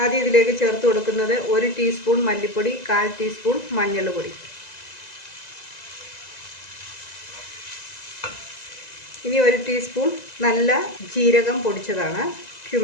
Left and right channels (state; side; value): late; right; 2.0 ms